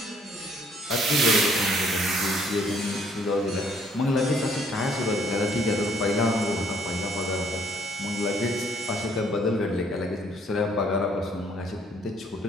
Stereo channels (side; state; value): both; normal; correlation 0.64